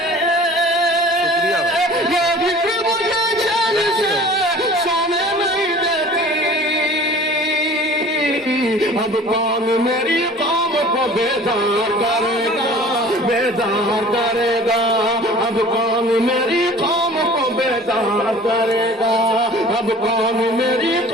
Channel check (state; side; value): normal; both; correlation 0.45